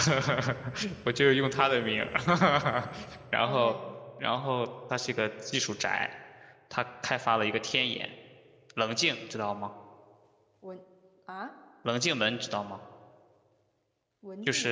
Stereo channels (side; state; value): both; identical; correlation 1.00